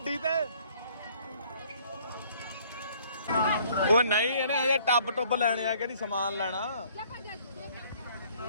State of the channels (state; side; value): inverted; both; correlation -0.59